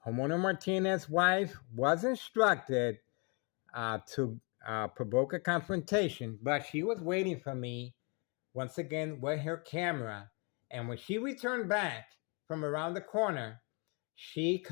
homeowner Martinez's wife was instructed to provoke a confrontation, but she was waiting for me, once again, with her camera. And when she returned back from around the corner, she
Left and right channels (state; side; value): quieter; right; 33.7 dB